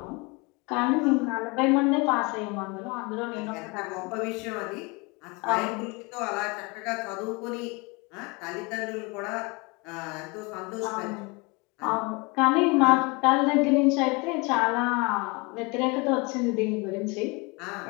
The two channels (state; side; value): quieter; right; 28.0 dB